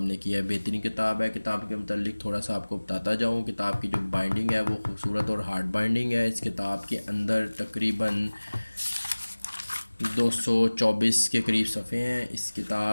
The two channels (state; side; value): inverted; both; correlation -1.00